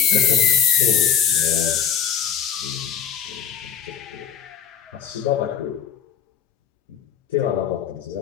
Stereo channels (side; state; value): right; quieter; 8.2 dB